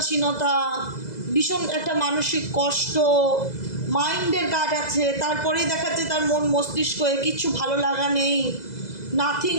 ভীষণ একটা মানসিক কষ্ট, মাইন্ডের কাজ আছে। তারপরেই দেখাচ্ছে তার মন মস্তিষ্কে কিচ্ছু ভালো লাগা নেই,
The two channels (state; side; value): late; right; 2.0 ms